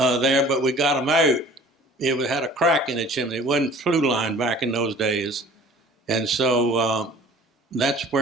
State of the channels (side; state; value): both; normal; correlation 0.48